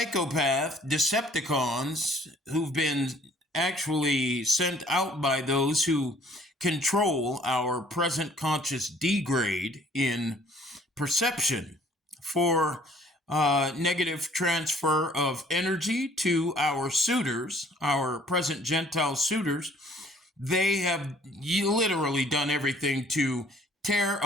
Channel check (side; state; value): both; normal; correlation 0.57